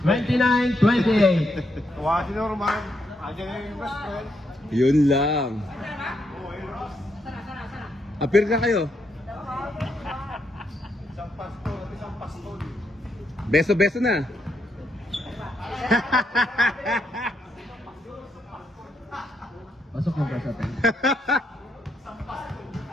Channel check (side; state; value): both; normal; correlation 0.78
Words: 29-28. Tuwa si Norman. Andiyan na yung best friend. Yun lang. Appear ka kayo. Beso-beso na. Pasok mo ba sa atin?